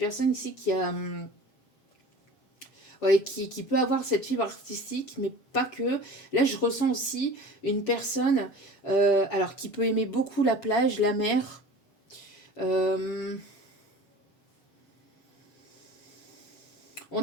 ici qui a... qui peut avoir cette fibre artistique, mais pas que. Là, je ressens aussi une personne alors qui peut aimer beaucoup la plage, la mer. On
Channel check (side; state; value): right; late; 7.3 ms